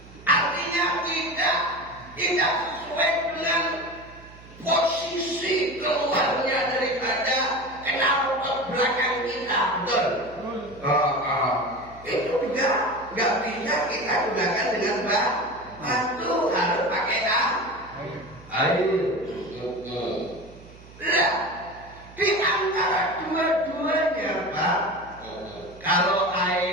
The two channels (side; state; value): right; noise; hum, 21 dB below the sound